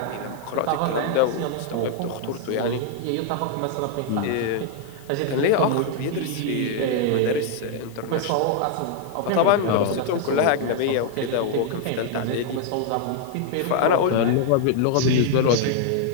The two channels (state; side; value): different; both; correlation 0.00